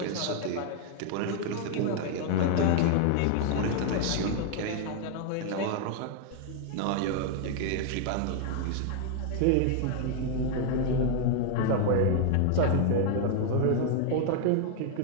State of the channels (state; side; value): different; both; correlation 0.00